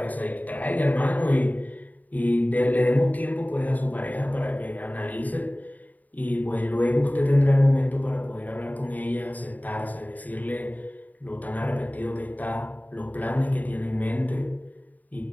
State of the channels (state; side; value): late; right; 0.078 ms